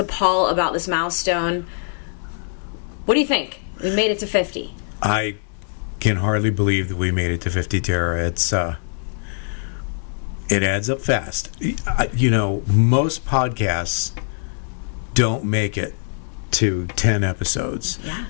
Paul about this milestone. What do you think? We made it to 50. I can hardly believe that we made it to 50, Tara. It's it adds up fast. You know, most podcasts don't make it to 10 episodes. Yeah.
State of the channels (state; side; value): silent; right; digital silence